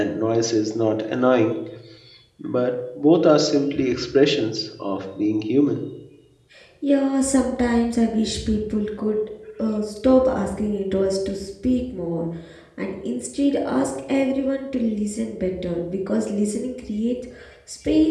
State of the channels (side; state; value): both; identical; correlation 1.00